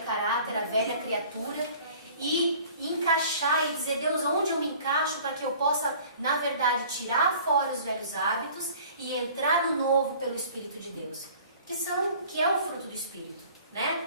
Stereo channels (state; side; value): inverted; both; correlation -0.49